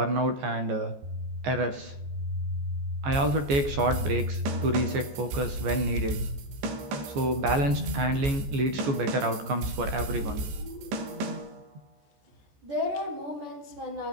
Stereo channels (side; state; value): left; late; 15 ms